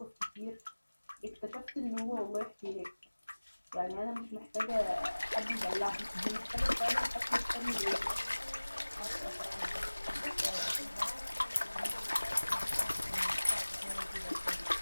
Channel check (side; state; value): both; inverted; correlation -1.00